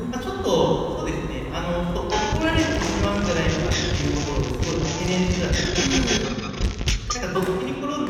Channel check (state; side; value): identical; both; correlation 1.00